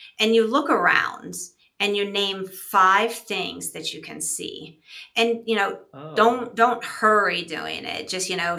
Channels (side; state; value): both; identical; correlation 1.00